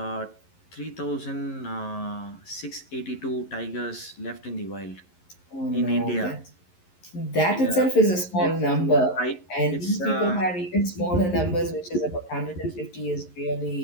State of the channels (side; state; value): right; late; 11 ms